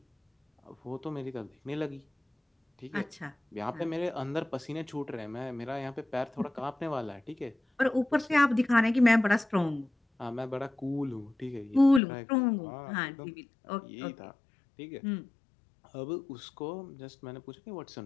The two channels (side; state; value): right; drops out; at 12.0 s